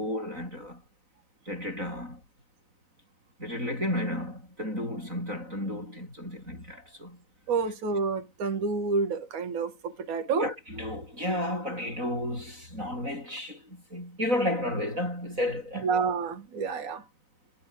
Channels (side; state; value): left; late; 4.0 ms